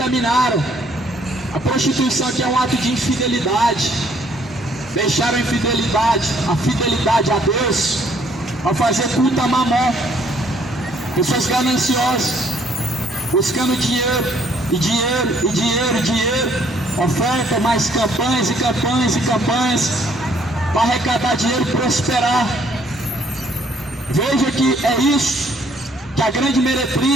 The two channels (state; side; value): normal; both; correlation 0.64